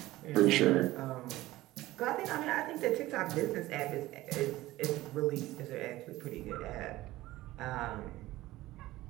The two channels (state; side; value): quieter; left; 17.2 dB